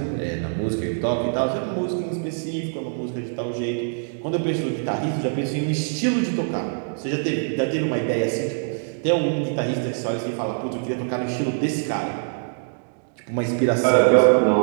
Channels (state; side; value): silent; left; digital silence